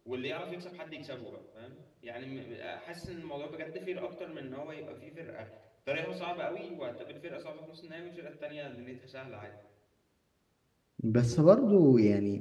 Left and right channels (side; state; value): both; identical; correlation 1.00